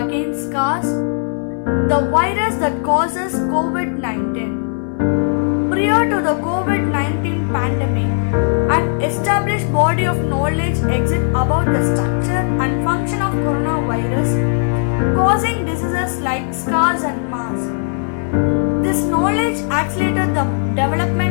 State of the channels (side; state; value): right; silent; 68 dB below the other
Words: SARS, the virus that causes COVID-19. Prior to the COVID-19 pandemic, an established body of knowledge exists about the structure and function of coronavirus causing diseases like SARS and MERS. This knowledge accelerated the